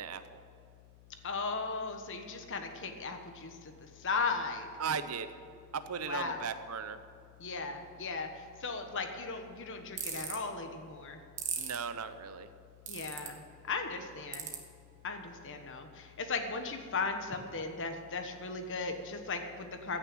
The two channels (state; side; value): noise; left; hum, 20 dB below the sound